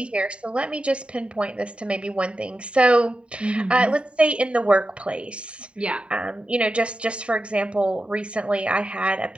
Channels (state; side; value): late; left; 0.057 ms